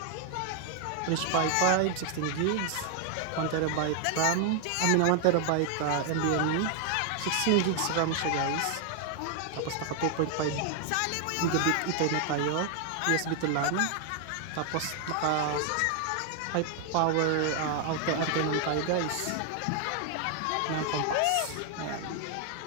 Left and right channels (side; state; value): both; different; correlation 0.00